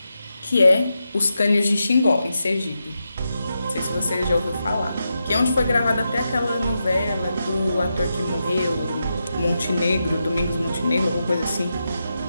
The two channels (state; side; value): inverted; both; correlation -0.87